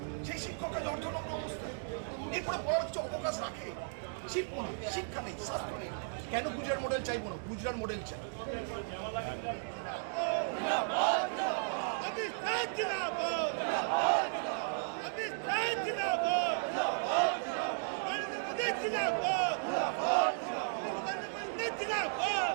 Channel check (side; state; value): left; silent; digital silence